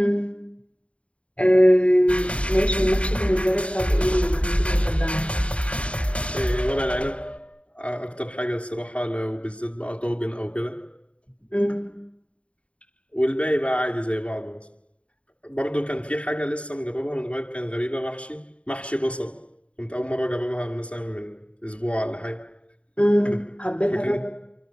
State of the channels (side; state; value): right; late; 0.062 ms